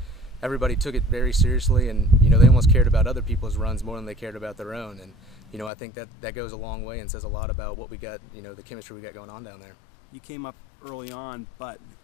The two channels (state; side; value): drops out; right; at 5.7 s